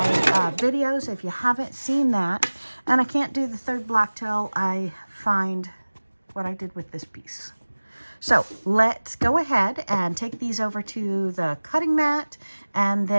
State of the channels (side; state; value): both; inverted; correlation -1.00